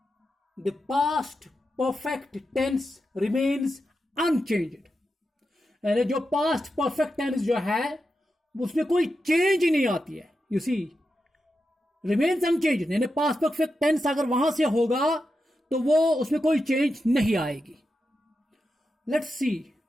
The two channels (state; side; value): normal; both; correlation 0.88